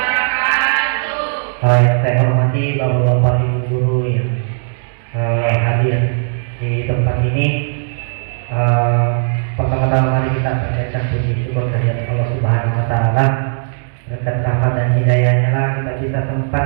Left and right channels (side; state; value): left; silent; digital silence